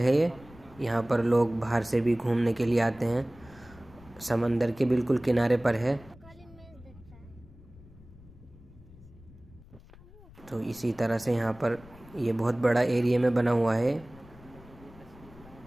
ये। यहाँ पर लोग बाहर से भी घूमने के लिए आते हैं। समंदर के बिल्कुल किनारे पर है। तो इसी तरह से यहाँ पर ये बहुत बड़ा एरिया में बना हुआ है।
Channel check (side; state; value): left; noise; rumble, 22 dB below the sound